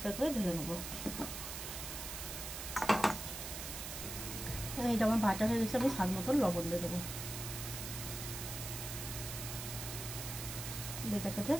করে ঢেলে নেবো। এটা আমার বাটা হয়ে গেছে। আমি স্বাদ মতন লবণ দিয়ে দেবো। এটাকে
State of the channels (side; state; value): right; noise; hiss, 6 dB below the sound